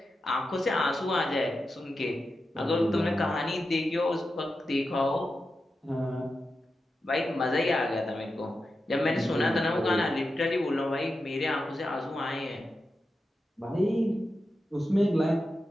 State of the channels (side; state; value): both; normal; correlation 0.90